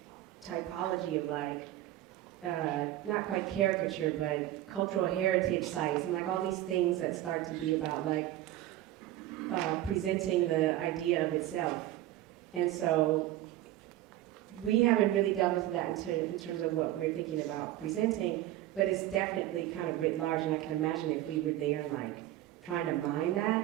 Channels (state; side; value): quieter; left; 14.6 dB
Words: typology of like, not quite caricature, but cultural heritage sites, and like all these things that start to be about like presenting the idea of itself. And so we haven't really delved into that in terms of what we're thinking about presenting, but it's definitely kind of writ large, and I can imagine if we were there and like trying to mine